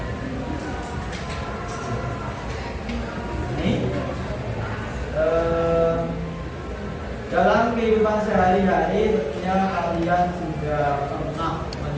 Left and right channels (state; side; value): identical; both; correlation 1.00